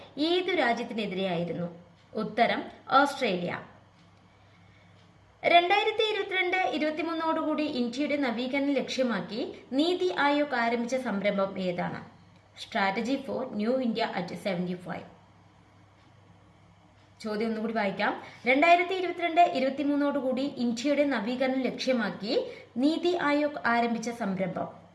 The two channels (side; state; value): both; identical; correlation 1.00